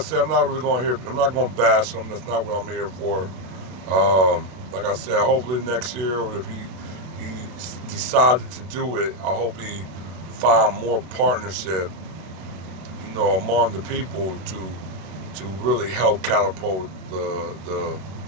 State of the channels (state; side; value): late; left; 32 ms